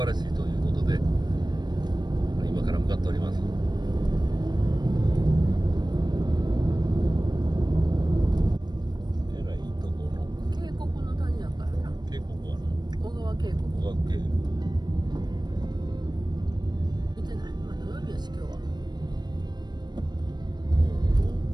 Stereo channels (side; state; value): left; late; 0.21 ms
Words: らしいということで今から向かっております。えらいとこの渓谷の谷やからな。渓谷はな小川渓谷。小川渓見てない。まあ土曜日やし今日は。